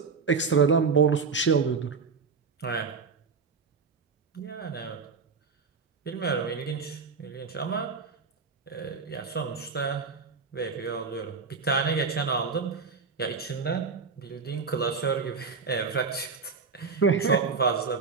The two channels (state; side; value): quieter; left; 5.1 dB